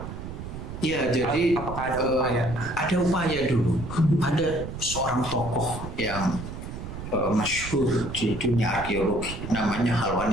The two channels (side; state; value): right; noise; rumble, 9 dB below the sound